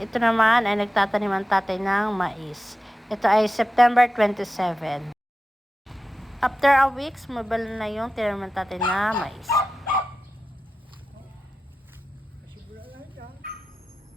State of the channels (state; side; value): normal; both; correlation 0.93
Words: naman ay nagtatanim ang tatay ng mais. Ito ay September 27. After a week, sumabal na yung tinanim ng tatay na mais.